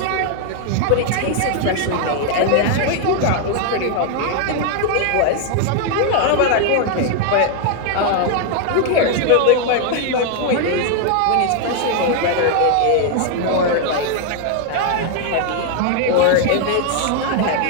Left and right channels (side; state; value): both; different; correlation 0.00